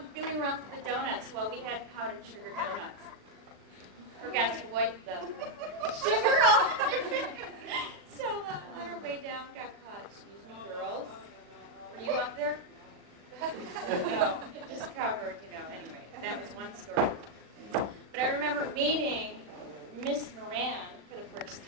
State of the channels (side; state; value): left; late; 39 ms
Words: feeling around for the donuts. Well, we had powdered sugar donuts. Forgot to wipe the sugar off. So on our way down, got caught. Excuse me, girls. Were you up there? No, just covered, Anyway, that was one story. But I remember meeting Miss Moran for the first